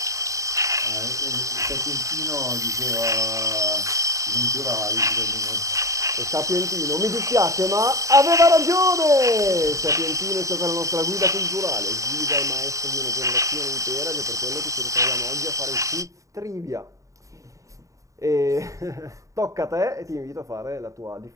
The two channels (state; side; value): late; left; 0.16 ms